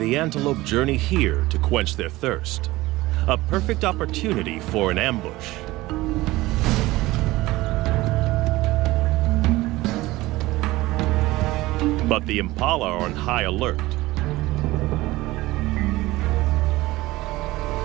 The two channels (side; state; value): left; quieter; 18.8 dB